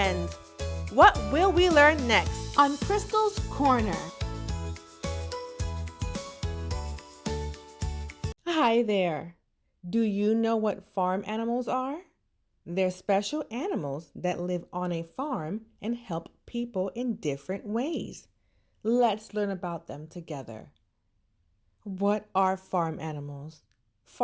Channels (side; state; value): both; identical; correlation 1.00